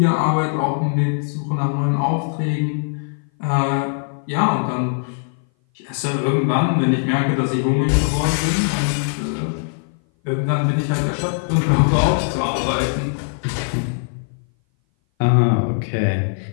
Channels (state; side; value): silent; right; 58 dB below the other